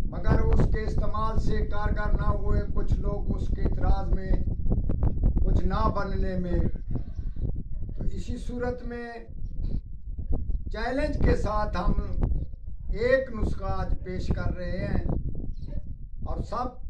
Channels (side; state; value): both; identical; correlation 1.00